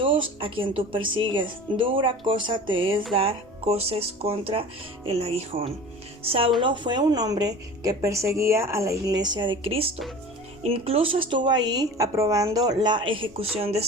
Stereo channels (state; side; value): normal; both; correlation 0.38